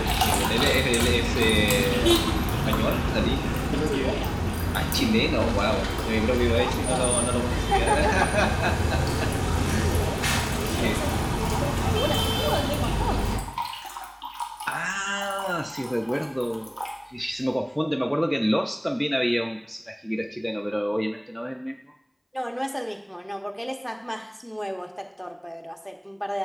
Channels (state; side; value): identical; both; correlation 1.00